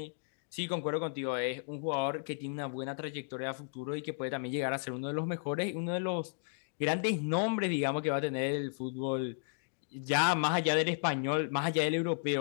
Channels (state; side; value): silent; right; digital silence